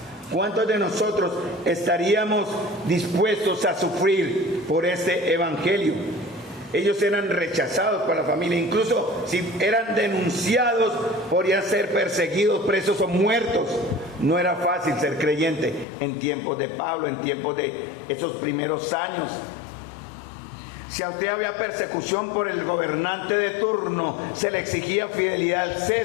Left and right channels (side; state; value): right; drops out; at 15.9 s